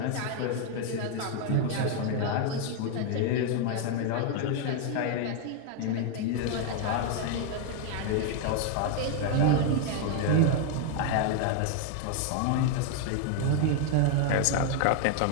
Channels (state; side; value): different; both; correlation 0.00